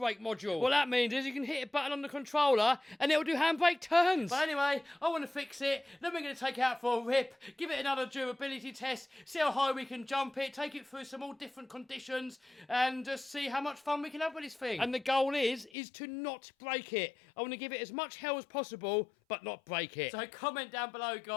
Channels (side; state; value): right; drops out; at 15.7 s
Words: module. What that means is you can hit a button on the controller and it'll do handbrake turns. But anyway, I want to fix it. Then we're going to take it out for a rip, give it another durability test, see how high we can jump it, take it through some all different conditions, and just see how much fun we can have with this thing. And the goal is to not break it. I want to give it as much hell as possible, but not break it. So comment down below,